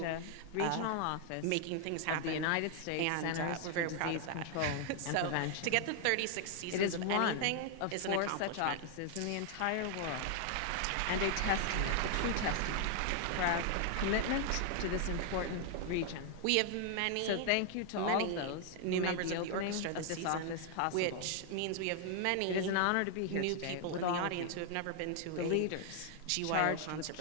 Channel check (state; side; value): different; both; correlation 0.00